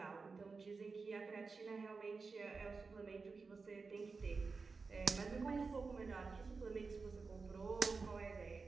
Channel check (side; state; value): left; quieter; 4.5 dB